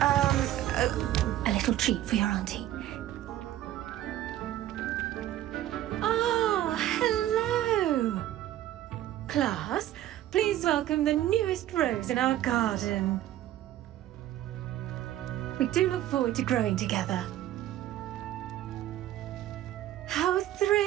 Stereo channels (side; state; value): left; quieter; 13.2 dB